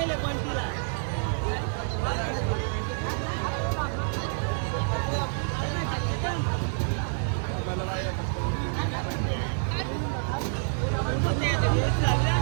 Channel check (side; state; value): left; silent; 59 dB below the other